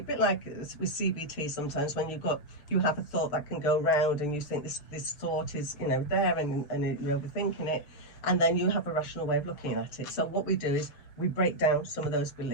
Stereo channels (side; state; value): right; late; 6.8 ms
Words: bit like with CBT sometimes, when you have a thought that can go round, and you think this thought is there, and you're overthinking it, and then you have a rational way of looking at it. So what we do is we break down some of those